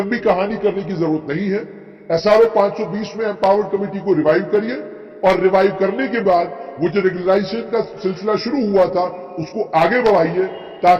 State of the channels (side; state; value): both; identical; correlation 1.00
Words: कहानी करने की जरूरत नहीं है। एसआरओ 520 में एम्पावर्ड कमेटी को रिवाइव करिए और रिवाइव करने के बाद वो जो रेगुलराइजेशन का सिलसिला शुरू हुआ था उसको आगे बढ़ाइए,